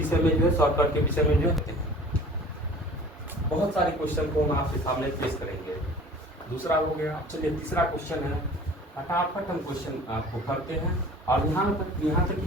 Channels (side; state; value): both; normal; correlation 0.45